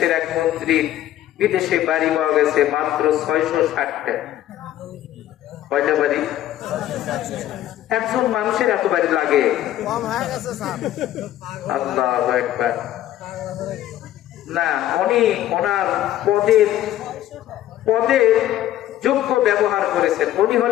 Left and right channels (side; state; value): right; quieter; 13.2 dB